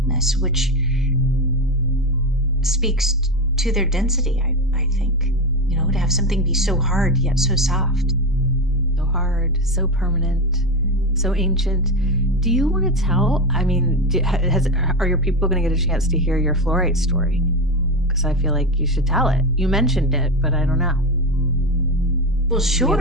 which speaks to their density. I think, to have something be so hard yet so soft. So hard, so permanent, so ancient. Do you want to tell? I mean, are your people going to get a chance to hear your fluorite story? Because I feel like you should tell it. You mentioned it, but I don't know. Well,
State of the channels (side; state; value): both; normal; correlation 0.16